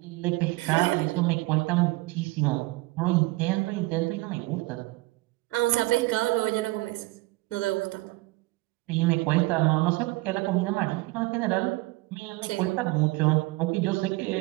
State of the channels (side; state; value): left; quieter; 21.6 dB